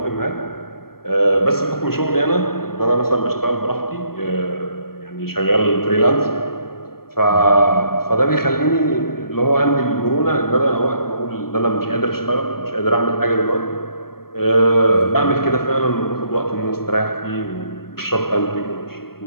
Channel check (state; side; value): late; right; 0.94 ms